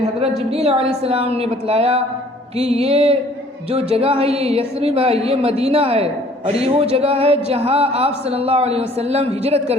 हज़रत जिब्रील अलैहिस्सलाम ने बतलाया कि ये जो जगह है ये यस्रिब है, ये मदीना है और ये वो जगह है जहाँ आप सल्लल्लाहु अलैहि वसल्लम हिजरत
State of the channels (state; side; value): normal; both; correlation 0.55